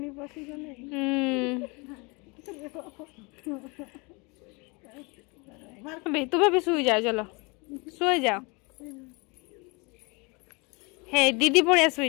बसी गने बे तुम्हें भी सुई जाओ चलो सोई जाओ हे दीदी पड़िया सुई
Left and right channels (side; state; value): right; quieter; 28.9 dB